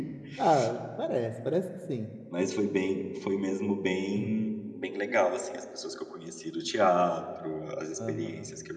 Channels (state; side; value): identical; both; correlation 1.00